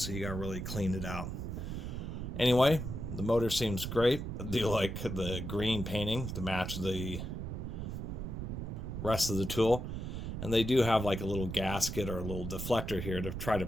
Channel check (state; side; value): noise; right; rumble, 5 dB below the sound